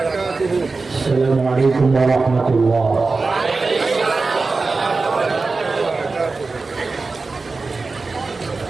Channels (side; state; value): left; quieter; 3.9 dB